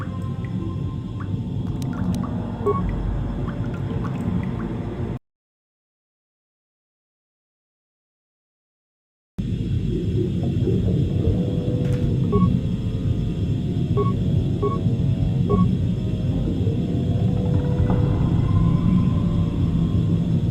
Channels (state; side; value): identical; both; correlation 1.00